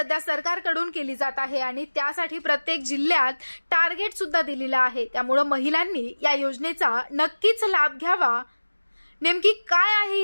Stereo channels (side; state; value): both; inverted; correlation -1.00